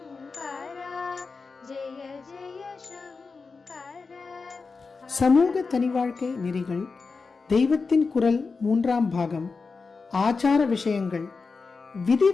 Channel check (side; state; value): right; quieter; 4.5 dB